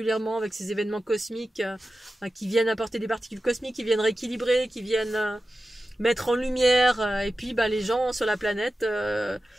avec ces événements cosmiques qui viennent apporter des particules cosmiques, qui viennent rééquilibrer, qui viennent mettre en lumière, et puis bah, les gens sur la planète,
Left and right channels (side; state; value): both; normal; correlation 0.93